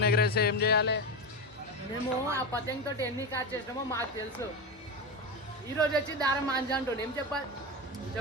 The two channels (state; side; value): normal; both; correlation 0.18